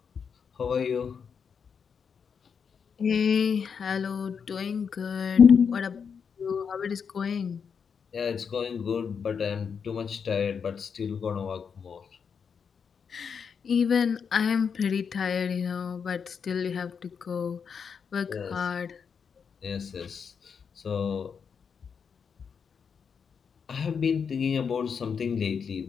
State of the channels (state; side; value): quieter; right; 6.5 dB